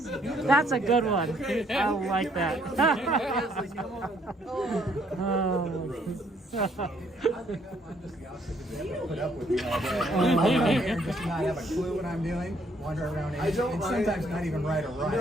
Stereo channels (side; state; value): both; normal; correlation 0.67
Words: That's a good one. I like that. Put up with me all day. Just not have a clue what I'm doing. Wander around and sometimes not even right or right.